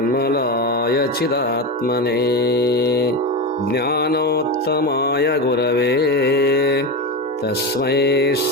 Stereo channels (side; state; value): both; normal; correlation 0.19